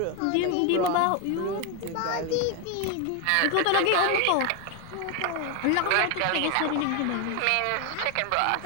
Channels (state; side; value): different; both; correlation 0.01